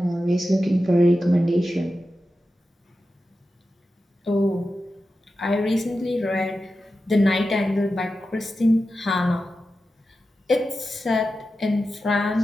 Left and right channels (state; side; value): normal; both; correlation 0.92